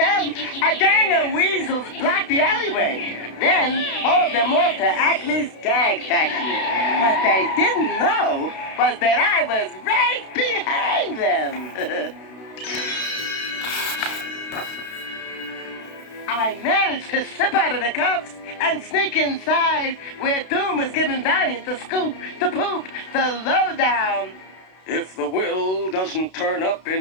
A gang of weasels blocked the alleyway. Then hauled them off to Acme's gag factory. What they didn't know was that I was right behind them. I managed to slip out of the cuffs and sneak inside where Doom was giving Valiant the scoop, the poop, the lowdown. If the will doesn't turn up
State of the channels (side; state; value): right; late; 32 ms